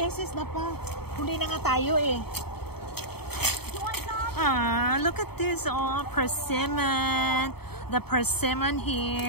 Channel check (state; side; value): late; right; 0.96 ms